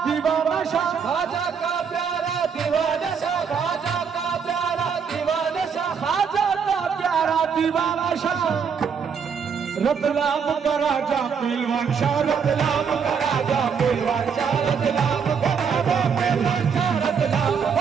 दीवाना शाह, खाजा का प्यारा दीवाना शाह, खाजा का प्यारा दीवाना शाह, खाजा का प्यारा दीवाना शाह, रतलाम का राजा पहलवान शाह, रतलाम का राजा पहलवान शाह, रतलाम का राजा पहलवान शाह, रतलाम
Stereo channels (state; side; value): quieter; left; 6.5 dB